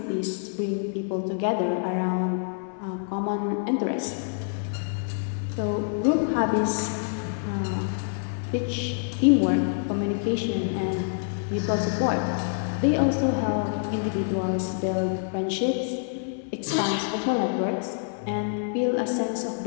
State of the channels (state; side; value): silent; right; 60 dB below the other